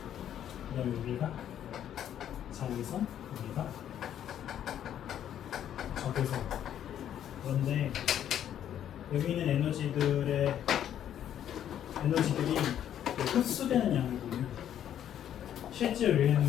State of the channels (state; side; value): quieter; right; 10.3 dB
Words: 그다음에 여기가 자외선, 여기가 적외선. 그런데 여기 있는 에너지들이 흡수되는 양을 보면 실제로